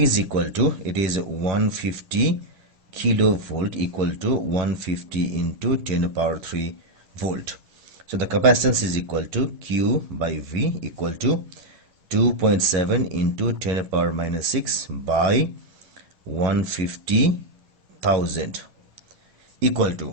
is equal to, it is 150 kilovolt equal to 150 into 10 to the power 3 volt. So the capacitance is equal to Q by V equal to 2.7 into 10 to the power minus 6 by 150,000 equal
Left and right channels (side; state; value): left; late; 10 ms